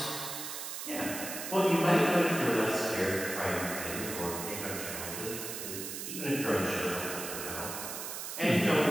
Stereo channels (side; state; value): right; noise; hiss, 6 dB below the sound